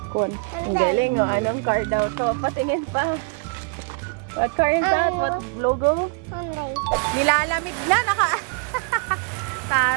Ang galing, oh. Anong car daw to? Patingin pa. What car is that? What logo? Hyundai. Nilalamig na,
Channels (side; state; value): left; quieter; 36.2 dB